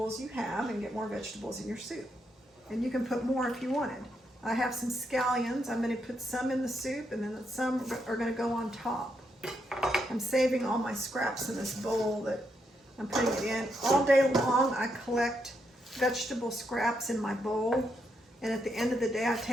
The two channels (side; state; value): both; normal; correlation 0.80